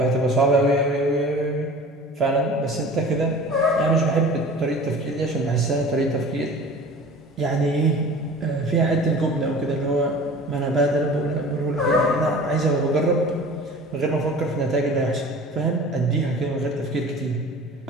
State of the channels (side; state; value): both; normal; correlation 0.41